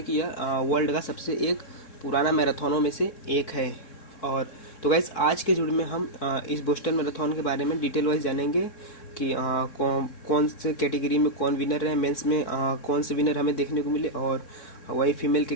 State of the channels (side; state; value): right; late; 3.7 ms